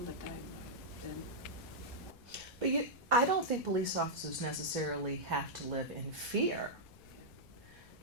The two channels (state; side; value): noise; left; rumble, 22 dB below the sound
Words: the time. But I don't think police officers necessarily have to live in fear.